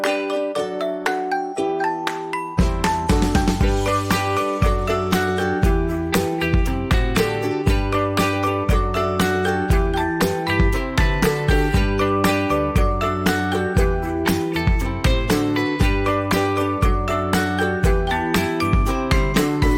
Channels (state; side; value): identical; both; correlation 1.00